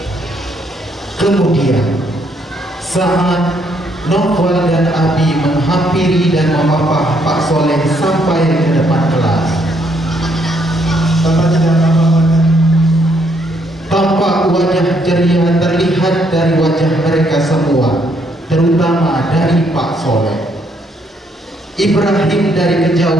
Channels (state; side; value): normal; both; correlation 0.71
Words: Kemudian saat Novel dan Abi menghampiri dan memapah Pak Soleh sampai ke depan kelas, Bapak tidak apa-apa. tampak wajah ceria terlihat dari wajah mereka semua, terutama dari Pak Soleh. Ibrahim dari